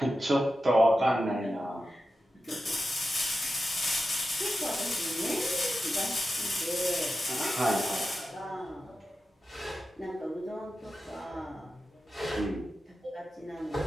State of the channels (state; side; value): normal; both; correlation 0.92